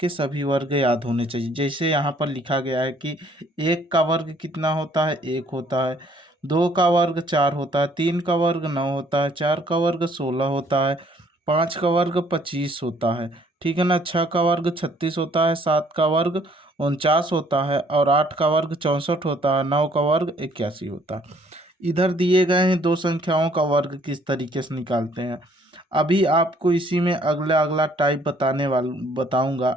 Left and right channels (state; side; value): normal; both; correlation 0.62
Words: सभी वर्ग याद होने चाहिए। जैसे यहाँ पर लिखा गया है कि 1 का वर्ग कितना होता है? 1 होता है। 2 का वर्ग 4 होता है। 3 का वर्ग 9 होता है। 4 का वर्ग 16 होता है। 5 का वर्ग 25 होता है। ठीक है ना? 6 का वर्ग 36 होता है। 7 का वर्ग 49 होता है और 8 का वर्ग 64 होता है। 9 का वर्ग 81 होता है। इधर दिए गए हैं दो संख्याओं का वर्ग किस तरीके से निकालते हैं। अभी आपको इसी में अगला अगला टाइप बताऊंगा,